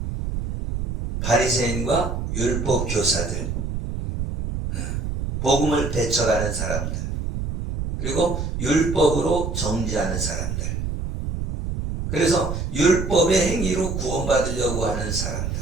바리새인과 율법 교사들, 복음을 배척하는 사람들, 그리고 율법으로 정죄하는 사람들. 그래서 율법의 행위로 구원받으려고 하는 사람들.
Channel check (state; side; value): noise; right; rumble, 3 dB below the sound